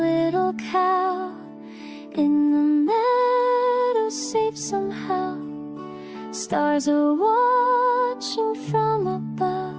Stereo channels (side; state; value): both; identical; correlation 1.00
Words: cow, in the meadow safe somehow. Stars are watching from above,